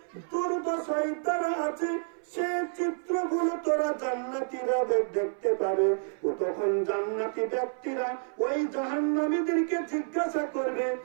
দুর্দশায় তারা আছে, সে চিত্রগুলো তোরা জান্নাতীরা দেখতে পাবে। ও তখন জান্নাতি ব্যক্তিরা ওই জাহান্নামীদেরকে জিজ্ঞাসা করবে,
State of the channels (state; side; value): silent; left; 58 dB below the other